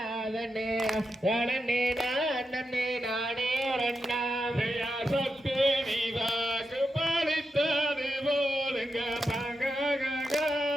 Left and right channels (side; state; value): both; normal; correlation 0.87